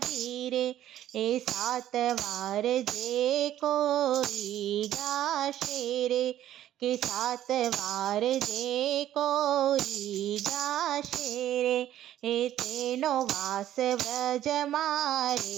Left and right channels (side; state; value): left; quieter; 12.3 dB